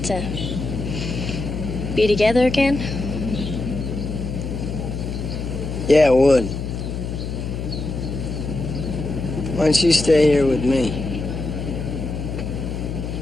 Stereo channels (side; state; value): left; noise; hum, 5 dB below the sound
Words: to be together again? Yeah, it would. Why don't you stay here with me?